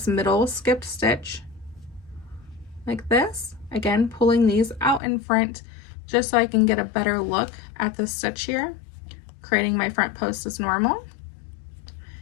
middle skipped stitch like this. Again, pulling these out in front just so I can get a better look at the stitch here, creating my front post as normal,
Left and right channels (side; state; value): right; drops out; at 5.0 s